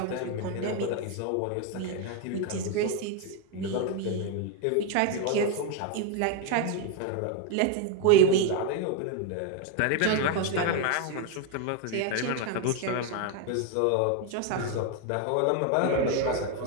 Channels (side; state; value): both; different; correlation 0.01